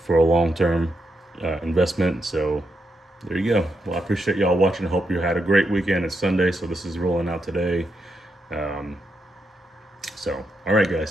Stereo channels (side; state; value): both; normal; correlation 0.82